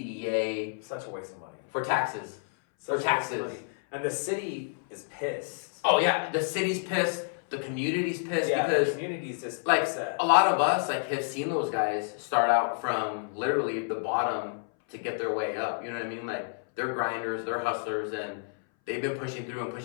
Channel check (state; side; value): silent; right; 58 dB below the other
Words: Such a waste of money. For taxes. Such for taxes. And the city is pissed. Oh yeah, the city's pissed. The community's pissed because the community's just like upset. A lot of us like have seen those guys start out from literally the bottom to get their way up. You know what I mean? Like they're grinders, they're hustlers, and they've been pushing through and